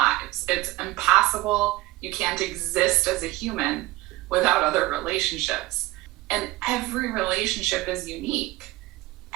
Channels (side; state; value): left; quieter; 18.9 dB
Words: It's impossible. You can't exist as a human without other relationships. And every relationship is unique.